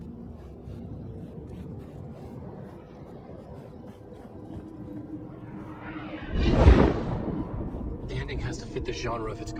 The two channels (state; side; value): identical; both; correlation 1.00